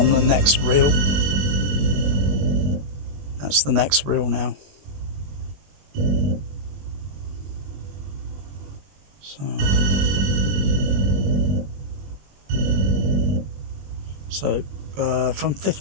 the next reel. That's the next reel now. So from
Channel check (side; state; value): left; late; 21 ms